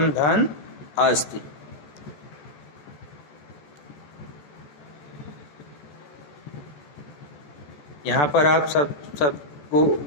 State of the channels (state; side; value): late; right; 14 ms